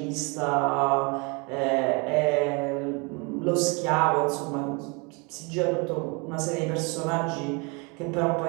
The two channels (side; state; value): left; quieter; 30.6 dB